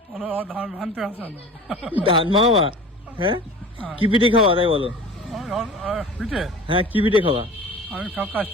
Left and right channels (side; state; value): both; normal; correlation 0.38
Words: ধান ভানতে আসে না। ধান মামা? হ্যাঁ, কি পিঠে খাওয়া তাই বলো? পিঠে হ্যাঁ, কি পিঠে খাওয়া? আমি সব